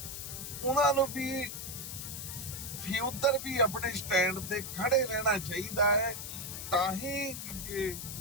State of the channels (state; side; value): noise; left; hiss, 7 dB below the sound